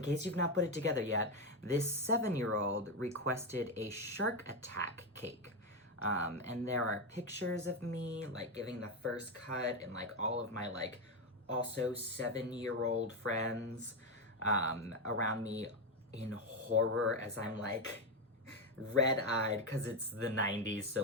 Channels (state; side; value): normal; both; correlation 0.09